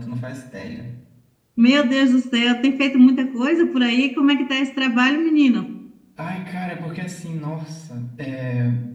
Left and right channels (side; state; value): both; identical; correlation 1.00